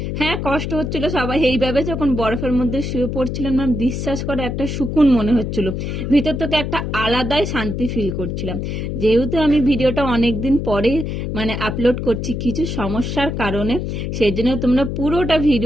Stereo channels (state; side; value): noise; left; hum, 3 dB below the sound